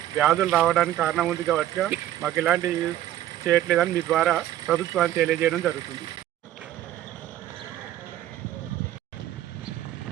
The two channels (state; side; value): quieter; left; 12.9 dB